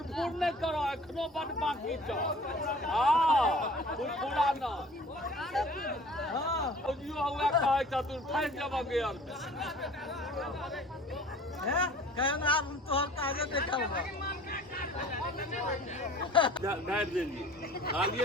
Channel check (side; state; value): both; normal; correlation 0.47